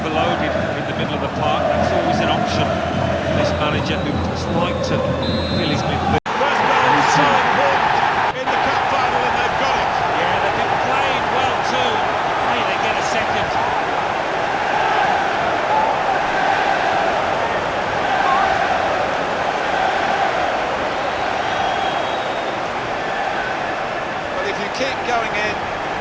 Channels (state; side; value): identical; both; correlation 1.00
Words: in the middle of the park, that's always an option for this manager who just like to fill his midfield. First so important in the cup final, and they've got it. Yeah, they've been playing well too. Hey, they get a second. But if you keep going in